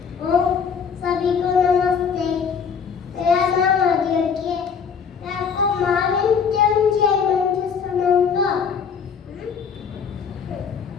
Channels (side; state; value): right; quieter; 6.5 dB